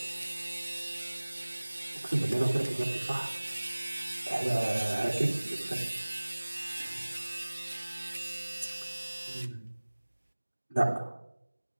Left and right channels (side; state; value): both; inverted; correlation -1.00